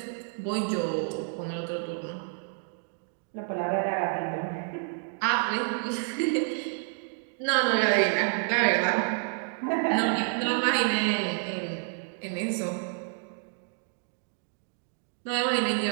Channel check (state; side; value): silent; left; 57 dB below the other